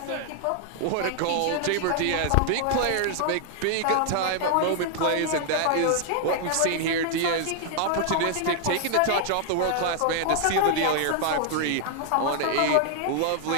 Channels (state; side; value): different; both; correlation 0.00